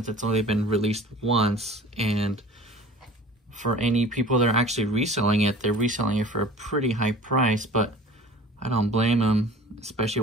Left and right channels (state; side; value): normal; both; correlation 0.43